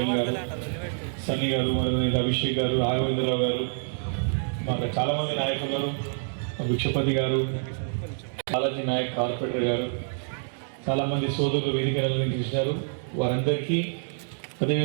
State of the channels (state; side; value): silent; left; digital silence